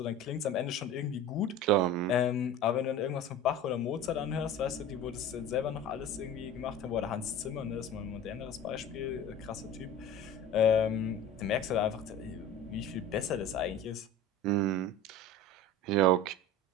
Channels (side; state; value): both; normal; correlation 0.36